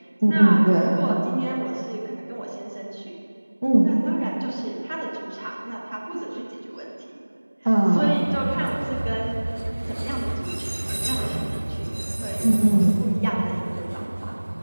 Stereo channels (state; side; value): inverted; both; correlation -1.00